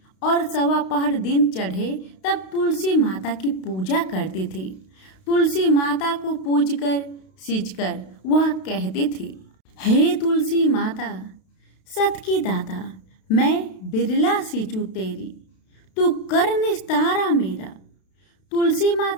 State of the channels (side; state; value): right; late; 32 ms